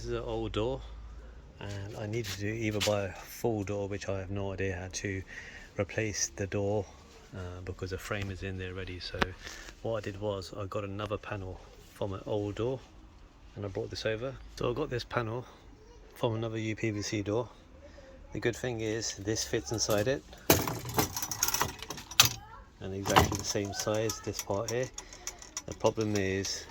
is an old door and I needed to either buy a full door, which I have no idea how to replace the door because the frame is in there ready. So what I did was I got another panel from an old door and I brought this over. So I got this panel from another uPVC door. The good thing is this fits inside it and exactly the same size, this part here. The problem is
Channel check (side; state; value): both; identical; correlation 1.00